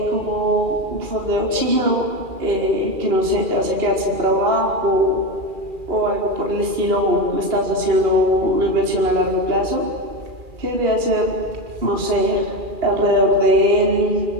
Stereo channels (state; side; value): late; left; 2.4 ms